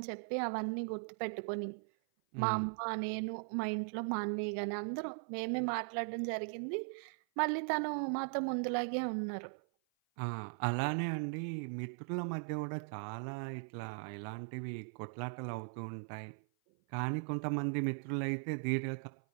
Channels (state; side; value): silent; left; 52 dB below the other